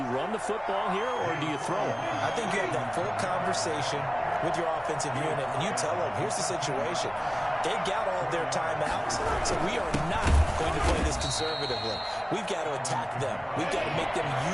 run the football here or do you throw it? I think you have that full conversation with your offensive unit, and you tell them, here's the situation. They got all of their timeouts, so we are not going to play this conservatively. We've got to attack them. We've got to make them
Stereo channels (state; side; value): identical; both; correlation 1.00